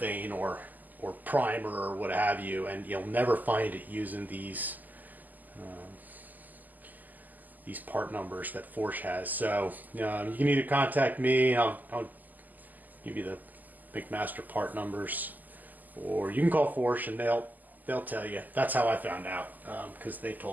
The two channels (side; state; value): left; late; 0.083 ms